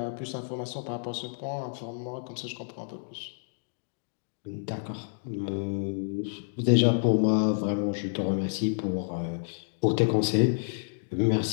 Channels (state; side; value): silent; right; digital silence